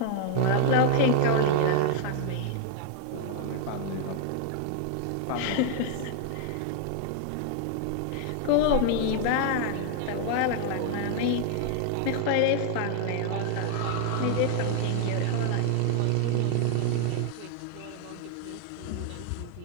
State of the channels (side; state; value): both; different; correlation 0.00